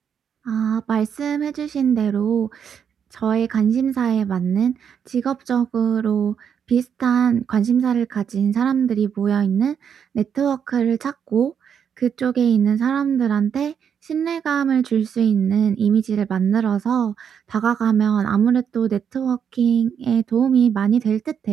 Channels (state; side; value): quieter; left; 7.7 dB